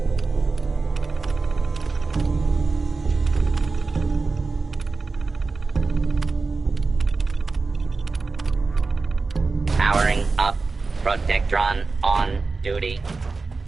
Powering up. Protectron on duty.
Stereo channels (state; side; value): quieter; left; 4.0 dB